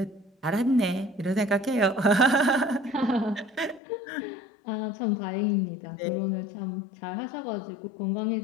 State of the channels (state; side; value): drops out; right; at 3.8 s